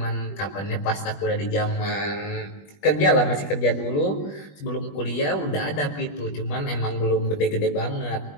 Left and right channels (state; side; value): late; right; 20 ms